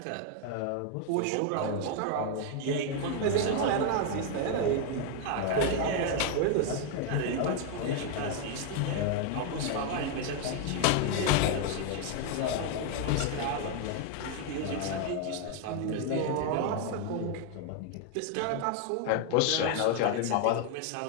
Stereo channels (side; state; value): both; different; correlation 0.00